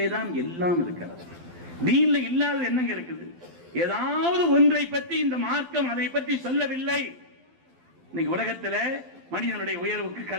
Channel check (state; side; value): late; left; 12 ms